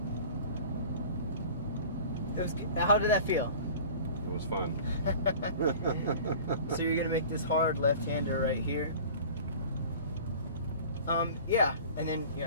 How did that feel? It was fun. So you're gonna make this hard left-hander right here. Yeah, and then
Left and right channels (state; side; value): inverted; both; correlation -0.42